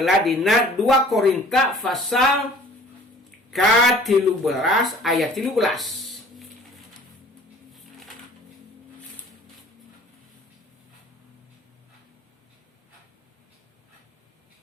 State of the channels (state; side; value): normal; both; correlation 0.50